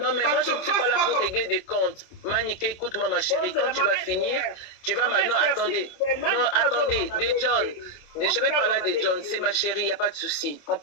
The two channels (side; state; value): right; late; 27 ms